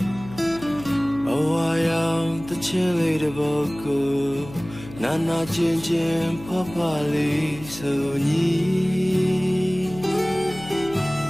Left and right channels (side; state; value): left; noise; hum, 16 dB below the sound